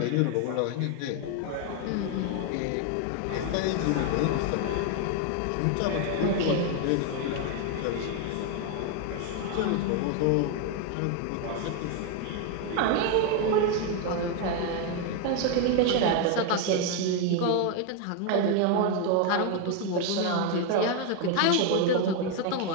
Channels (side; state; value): both; different; correlation 0.01